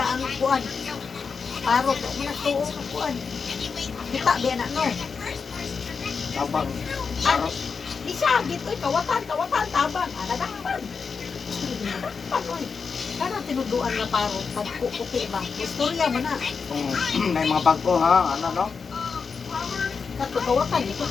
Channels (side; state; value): right; quieter; 5.4 dB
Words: ang kuan. Parok mo na tuo ang kuan. Kita biya na no. Tabang. Ano? Di siya, dito, kawatan, tabang, nadakpan. Nadakpan, oy. Kana tinuduan na parang pagkukuti ba? Istorya mo na. May mga bagko ha, ano no? Kato, kawatan, dito,